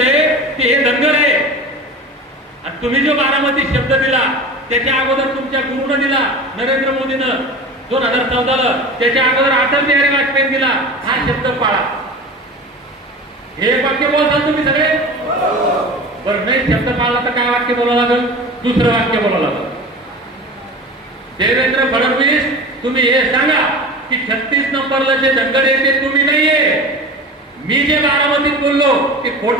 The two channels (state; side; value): normal; both; correlation 0.34